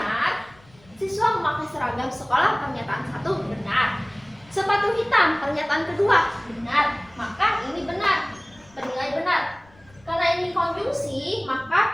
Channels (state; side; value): noise; left; rumble, 28 dB below the sound